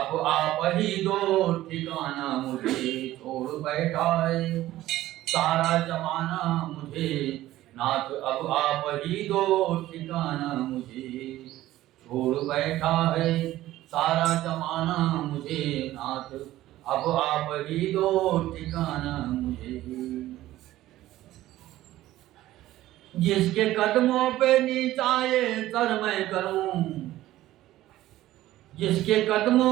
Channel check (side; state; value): left; quieter; 15.1 dB